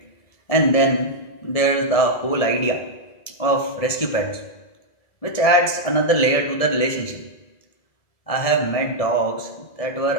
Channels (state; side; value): late; right; 1.7 ms